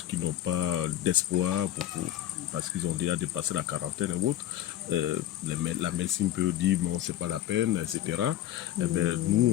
qu'ils n'ont pas d'espoir parce qu'ils ont déjà dépassé la quarantaine ou autre, la médecine peut dire bon, c'est pas la peine, etc. Eh ben,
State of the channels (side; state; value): right; quieter; 12.6 dB